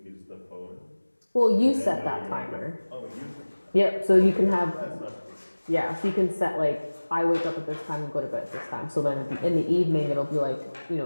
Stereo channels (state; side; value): inverted; both; correlation -1.00